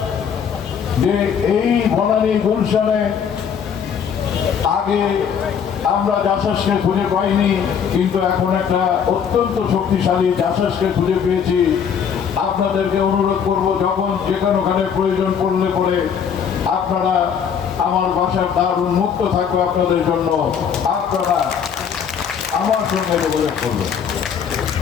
যে এই বনানী গুলশানে আগে আমরা জাসাসকে খুঁজে পাইনি, কিন্তু এখন একটা অত্যন্ত শক্তিশালী জাসাসকে খুঁজে পেয়েছি। আপনাদেরকে অনুরোধ করব, যখন যেখানে প্রয়োজন পড়লে পরে আপনারা, আমার বাসার দ্বার উন্মুক্ত থাকবে আপনাদের জন্য, আপনারা আমার সঙ্গে যোগাযোগ করবেন।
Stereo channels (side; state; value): right; quieter; 7.4 dB